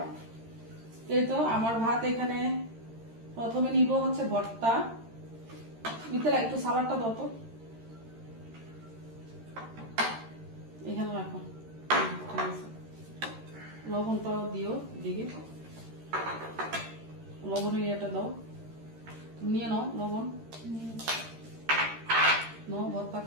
এই তো আমার ভাত এখানে, প্রথমে নিব হচ্ছে ভর্তা। মিথিলা একটু সালাডটা দাও তো, এখানে রাখো, ঠিক আছে। লবণটাও দিও দিকে, লবণের ইয়েটা দাও, নিয়ে নাও লবণ, নাও ভর্তা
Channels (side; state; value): left; late; 13 ms